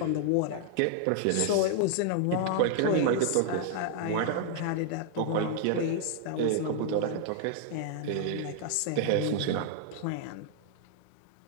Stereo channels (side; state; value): both; different; correlation -0.01